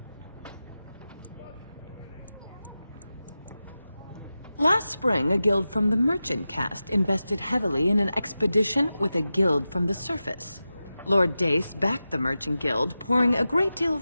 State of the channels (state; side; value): inverted; both; correlation -0.93